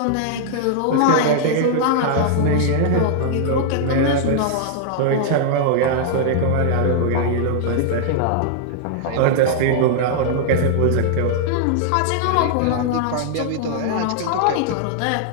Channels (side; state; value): both; different; correlation -0.01